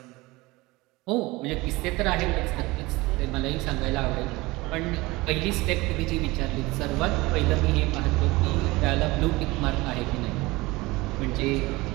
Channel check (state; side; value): quieter; left; 21.6 dB